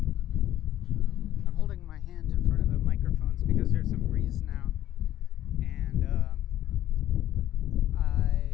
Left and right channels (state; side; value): quieter; right; 12.6 dB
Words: I'm holding my hand in front of the microphones because there's some breeze now, and